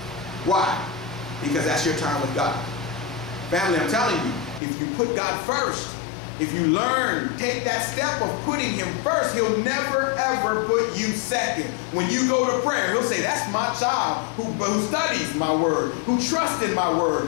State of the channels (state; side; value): drops out; right; at 4.6 s